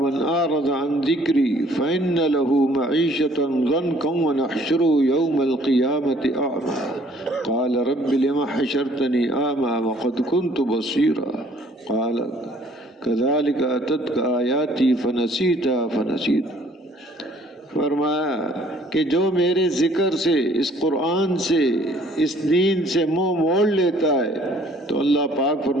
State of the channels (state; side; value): normal; both; correlation 0.58